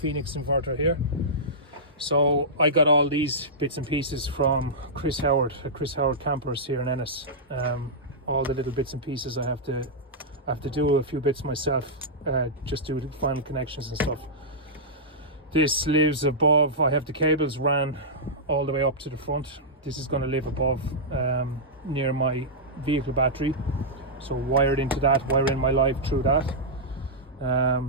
inverter here. So I got all these bits and pieces from Chris Howard at Chris Howard Campers here in Ennis. All the little bits and pieces I have to do a few bits myself, just do the final connections and stuff. This lives above. I have the cables ran all the way up to the front. This is going to live above, near my vehicle battery, so wired into that, wiring my live through that.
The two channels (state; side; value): normal; both; correlation -0.12